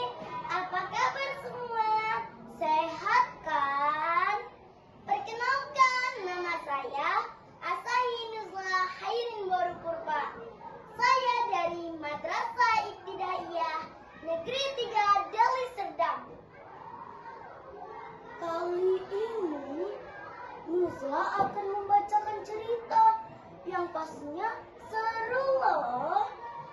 Apa kabar semua? Sehat kan? Perkenalkan, nama saya Asahi Nuzla Hairin Boru Purba. Saya dari Madrasah Ibtidaiyah Negeri 3 Deli Serdang. Kali ini Nuzla akan membacakan cerita yang pastinya seru loh.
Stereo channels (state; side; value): identical; both; correlation 1.00